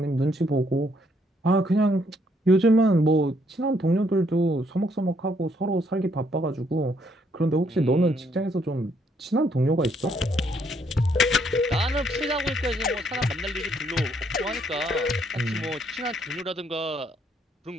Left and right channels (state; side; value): normal; both; correlation 0.70